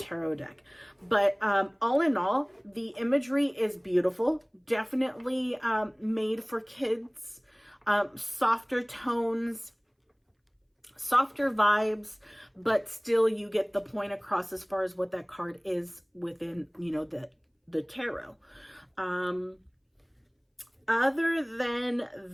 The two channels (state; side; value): identical; both; correlation 1.00